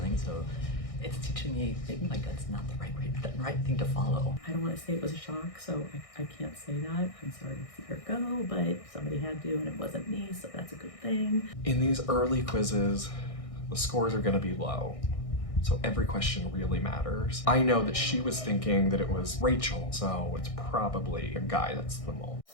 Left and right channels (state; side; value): late; right; 1.6 ms